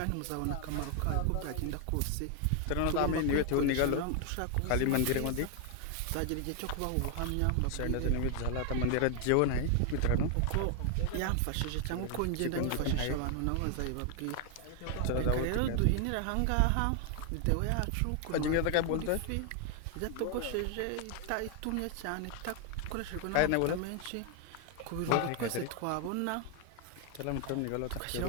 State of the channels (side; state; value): both; different; correlation 0.01